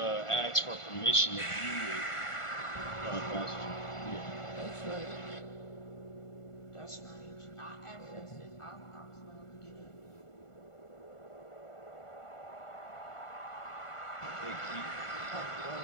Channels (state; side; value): late; right; 1.5 ms